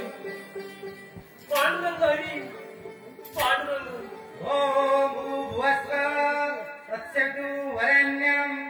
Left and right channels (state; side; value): identical; both; correlation 1.00